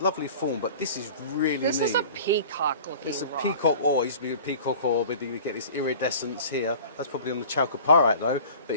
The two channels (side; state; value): both; inverted; correlation -0.43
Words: lovely form, but this is really neat. This is a peacock-looking rock. It's a peacock ore. It used to be a peacock ore, but you get this iridescence here. That's probably on the chalcopyrite, though. But